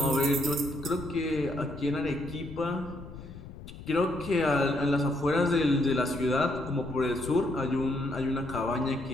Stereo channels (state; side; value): noise; left; rumble, 14 dB below the sound